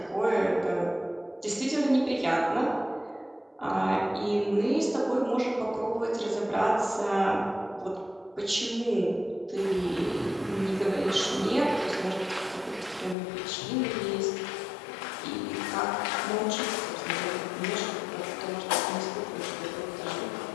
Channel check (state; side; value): drops out; right; at 13.2 s